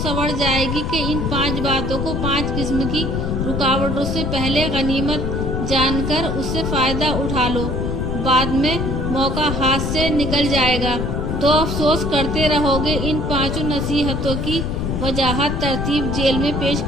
जाएगी कि इन 5 बातों को 5 किस्म की रुकावटों से पहले गनीमत जानकर उससे फायदा उठा लो, बाद में मौका हाथ से निकल जाएगा तो अफसोस करते रहोगे। इन 5 नसीहतों की वजाहत तरतीब जेल में पेश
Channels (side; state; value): left; noise; rumble, 2 dB below the sound